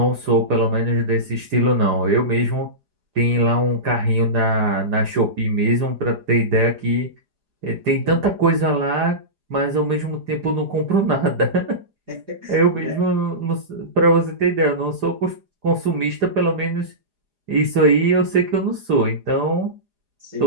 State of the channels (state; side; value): late; left; 4.9 ms